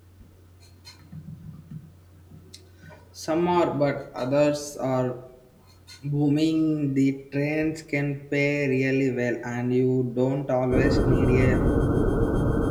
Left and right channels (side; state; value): both; identical; correlation 1.00